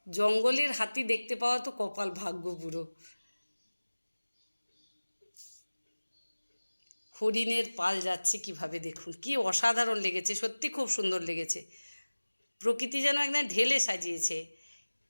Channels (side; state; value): both; inverted; correlation -1.00